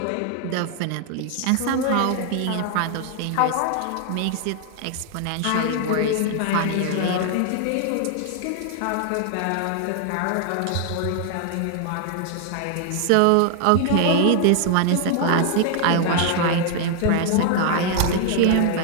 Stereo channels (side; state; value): both; different; correlation 0.00